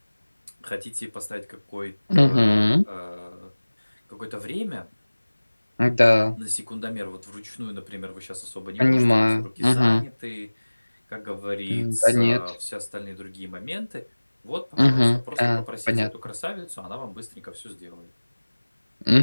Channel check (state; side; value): inverted; both; correlation -1.00